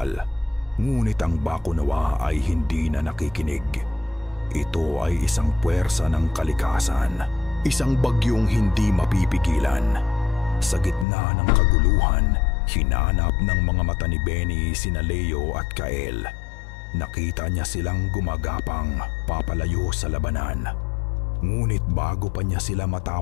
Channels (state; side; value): drops out; right; at 11.1 s